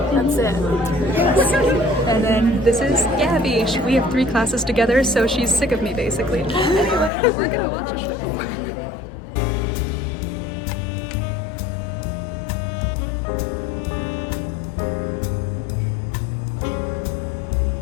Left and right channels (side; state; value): right; drops out; at 7.1 s